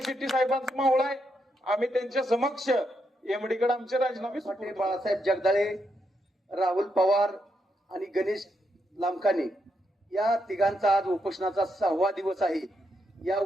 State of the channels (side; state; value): both; normal; correlation 0.81